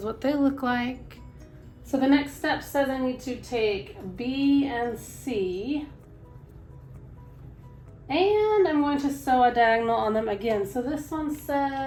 what they look like. So the next step says I need to take B and C, and I'm going to sew a diagonal on them again. So this one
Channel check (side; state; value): both; identical; correlation 1.00